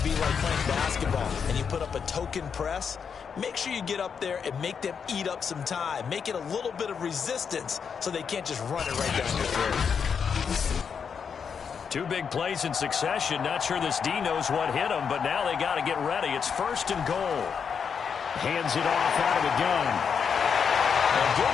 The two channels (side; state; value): right; quieter; 6.6 dB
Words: be like playing basketball, and you put up a token press. Make sure you get up there and make them eat up some time. Make it a little bit of resistance so they can't just run it right down your throat. Two big plays in succession. Not sure this D knows what hit him, but now they got to get ready. It's 1st and goal. Hands it off out of the gun. A